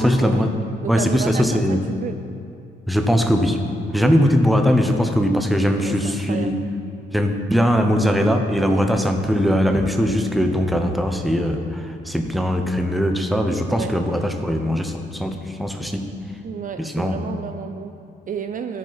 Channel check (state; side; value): normal; both; correlation 0.84